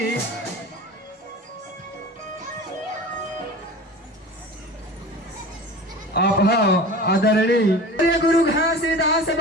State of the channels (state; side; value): normal; both; correlation 0.36